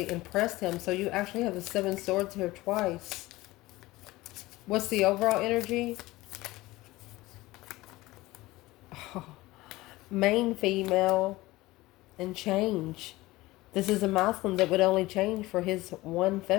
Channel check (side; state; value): right; quieter; 19.1 dB